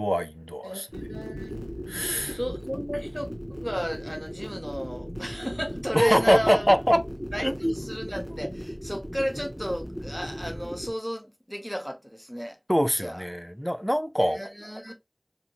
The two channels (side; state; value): both; identical; correlation 1.00